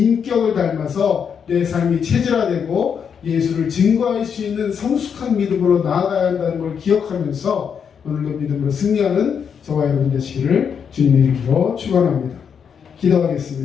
닮아서 내 삶이 체질화되고 예수를 증거할 수 있는 성숙한 믿음으로 나아가야 한다는 걸 기억하면서 오늘도 믿음으로 승리하는 저와 여러분 되시기를 주님의 이름으로 축원합니다.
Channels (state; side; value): quieter; right; 7.1 dB